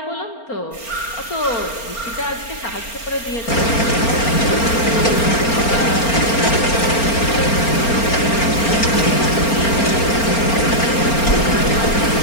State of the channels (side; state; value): right; late; 4.4 ms